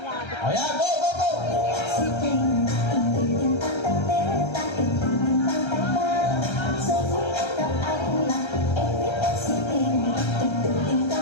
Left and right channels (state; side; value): late; right; 1.3 ms